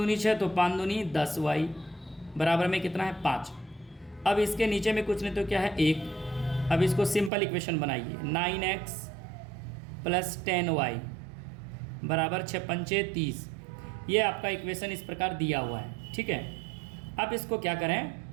6, तो 5 दूनी 10y बराबर में कितना है 5। अब इसके नीचे में कुछ नहीं तो क्या है 1। अब इसको सिंपल इक्वेशन बनाइए, 9x प्लस 10y बराबर 6 पंचे 30। ये आपका इक्वेशन इस प्रकार दिया हुआ है। ठीक है, अब इसको क्या करें,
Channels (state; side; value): drops out; left; at 7.3 s